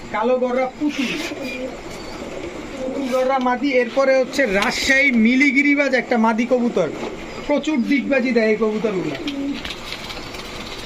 কালো গররা পুতুল গররা মাদি। এরপরে হচ্ছে রাজশাহী মিলিগিরিবাজ একটা মাদি কবুতর, প্রচুর ডিগবাজি দেয় এই কবুতরগুলো।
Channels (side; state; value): both; identical; correlation 1.00